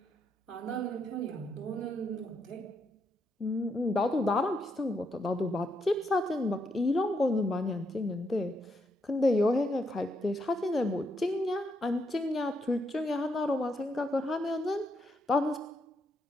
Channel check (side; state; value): both; normal; correlation 0.79